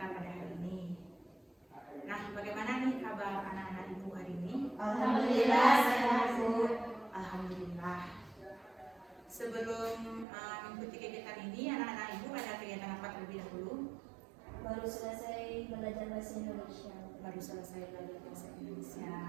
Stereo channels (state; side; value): drops out; left; at 10.2 s